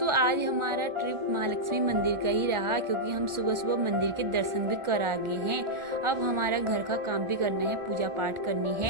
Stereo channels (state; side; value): late; left; 1.4 ms